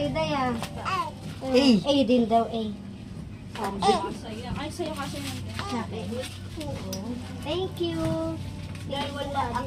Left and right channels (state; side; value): identical; both; correlation 1.00